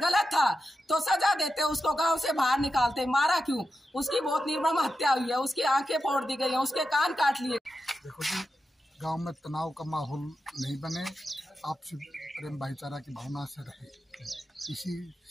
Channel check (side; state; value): both; normal; correlation 0.90